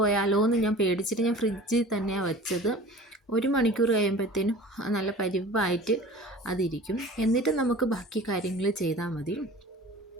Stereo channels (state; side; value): normal; both; correlation 0.42